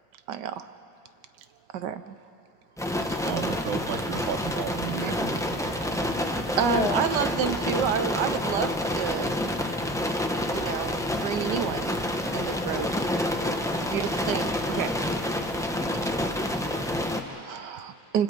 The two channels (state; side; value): normal; both; correlation 0.41